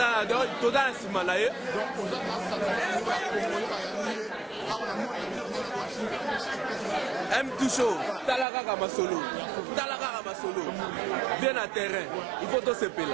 donc tout dans simanaye. M2 show, talaka kama solo. Bien à terrain. Il faut tout se payer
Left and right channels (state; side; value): drops out; left; at 8.5 s